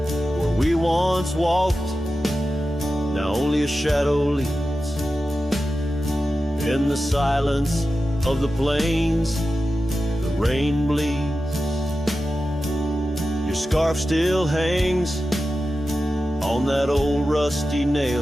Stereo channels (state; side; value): normal; both; correlation 0.93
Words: we once walked, now only a shadow leads. In the silence of the plains, the rain bleeds. Your scarf still hangs on that old rusty